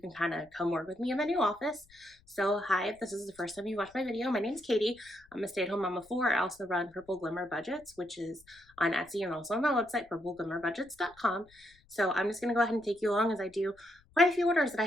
kind of come work with me in my new office. So hi, if this is the first time you watch my video, my name's Katie. I'm a stay-at-home mom of four. I also run Purple Glimmer Budgets, which is on Etsy and also on my website, PurpleGlimmerBudgets.com. So I'm just going to go ahead and take you along as I do quite a few orders that I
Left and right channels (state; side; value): noise; left; rumble, 29 dB below the sound